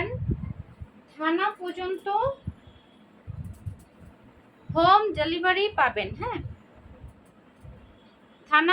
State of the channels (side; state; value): both; identical; correlation 1.00